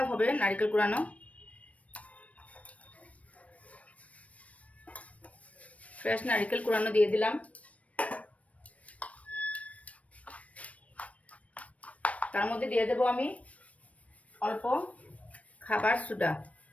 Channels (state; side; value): late; right; 0.066 ms